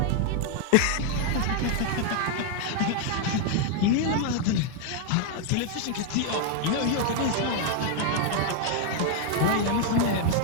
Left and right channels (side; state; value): both; different; correlation 0.00